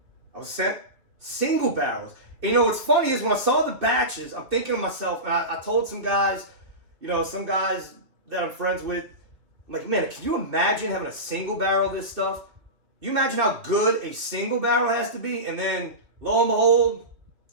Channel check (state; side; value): late; left; 2.9 ms